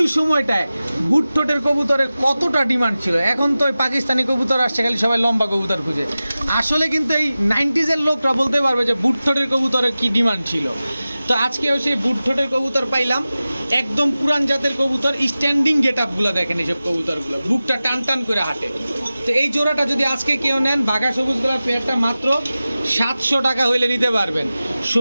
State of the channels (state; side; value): inverted; both; correlation -0.96